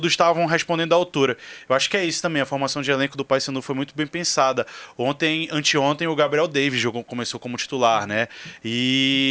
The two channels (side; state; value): both; identical; correlation 1.00